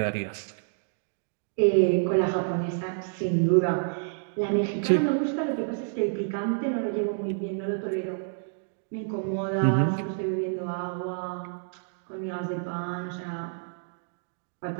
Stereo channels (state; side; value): silent; left; digital silence